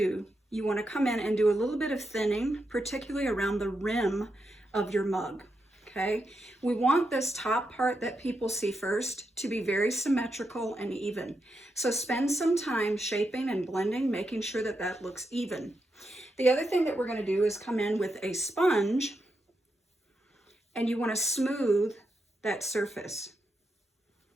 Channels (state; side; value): normal; both; correlation 0.84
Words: you want to come in and do a little bit of thinning, particularly around the rim of your mug. Okay, we want this top part that people see first to be very symmetrical and even. So spend some time shaping and blending, making sure that that looks even. The other thing that we're going to do is come in with a sponge, and you want to smooth that surface.